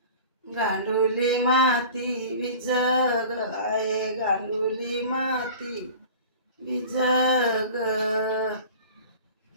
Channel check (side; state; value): both; inverted; correlation -0.41